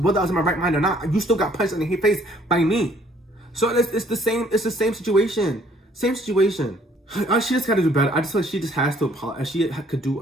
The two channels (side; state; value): both; normal; correlation 0.61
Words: in my right mind or not. You still got punched in the face by me. So it's the same situation. Same situation. She just got to do better. I just feel like she just has to apologize. She could do